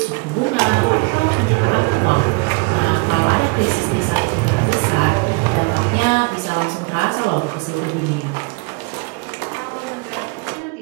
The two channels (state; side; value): quieter; left; 29.5 dB